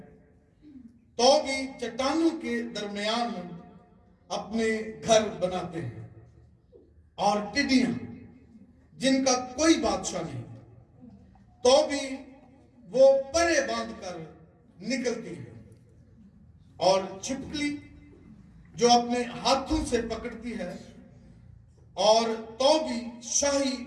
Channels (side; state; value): both; identical; correlation 1.00